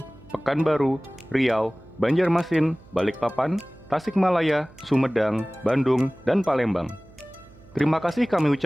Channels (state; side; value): noise; right; hum, 24 dB below the sound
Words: Pekanbaru, Riau, Banjarmasin, Balikpapan, Tasikmalaya, Sumedang, Bandung, dan Palembang. Terima kasih kami